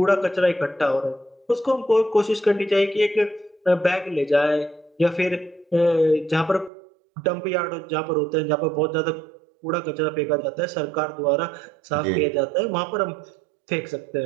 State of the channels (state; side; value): drops out; left; at 6.7 s